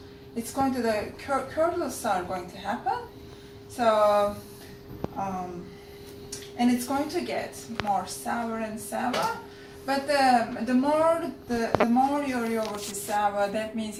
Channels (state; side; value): identical; both; correlation 1.00